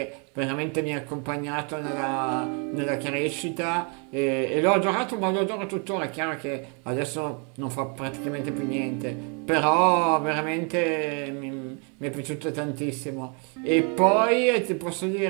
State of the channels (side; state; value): left; quieter; 37.1 dB